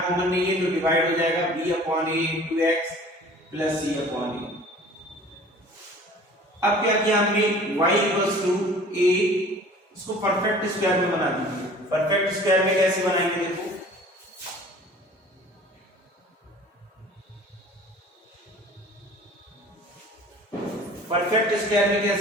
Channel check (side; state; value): both; normal; correlation 0.47